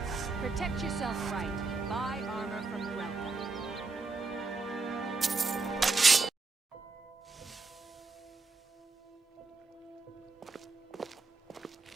Protect yourself right. Buy armor from Relka.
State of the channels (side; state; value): left; quieter; 4.0 dB